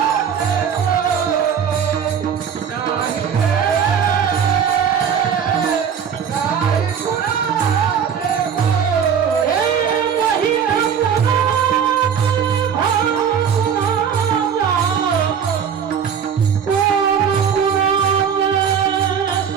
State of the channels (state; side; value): quieter; left; 7.6 dB